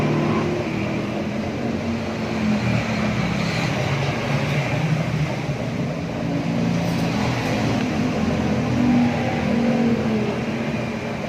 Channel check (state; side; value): identical; both; correlation 1.00